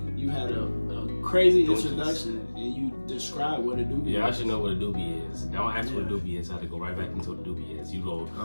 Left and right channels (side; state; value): both; inverted; correlation -1.00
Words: you had a crazy introduction and you described what a doobie Yeah, I is. should know what a doobie is. Don't ask what a doobie is. I have to go right back into what a doobie is. You roll,